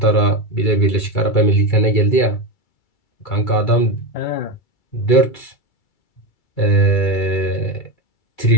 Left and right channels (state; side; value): late; right; 2.3 ms